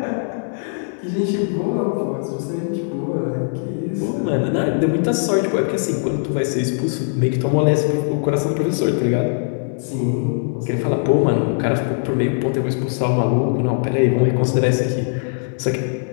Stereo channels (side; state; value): right; silent; digital silence